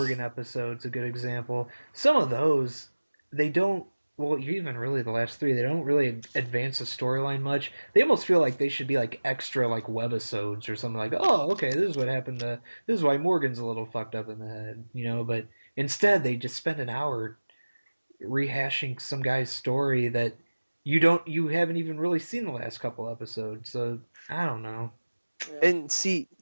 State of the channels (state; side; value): inverted; both; correlation -1.00